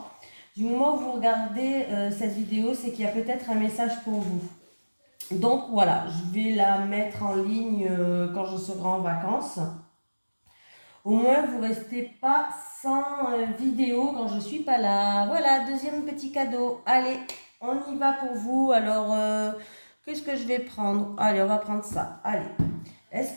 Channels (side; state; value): both; inverted; correlation -1.00